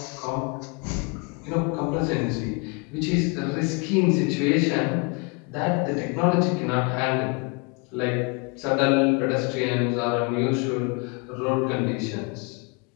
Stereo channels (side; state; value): right; quieter; 32.0 dB